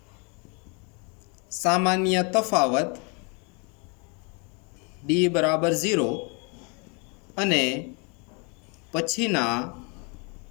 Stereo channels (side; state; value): right; quieter; 33.5 dB